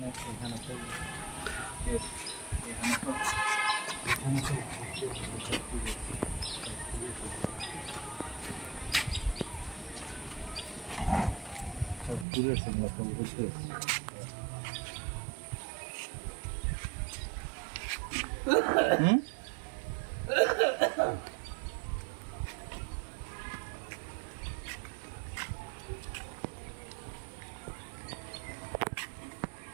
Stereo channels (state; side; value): drops out; left; at 12.2 s